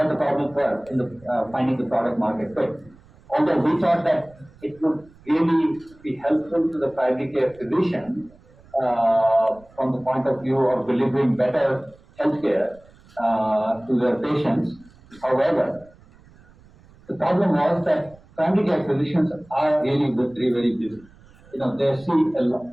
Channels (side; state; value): right; noise; rumble, 26 dB below the sound